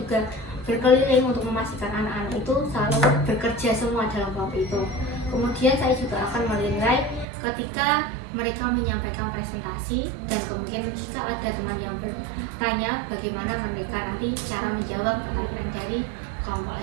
berkeliling untuk memastikan anak-anak itu selalu bekerja semua dalam kelompok itu. Kemudian saya juga akan menilai ketika mereka menyampaikan presentasi, dan kemudian jika ada teman yang bertanya bagaimana mereka nanti cara menjawab pertanyaan dari kelompok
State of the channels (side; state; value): left; drops out; at 7.2 s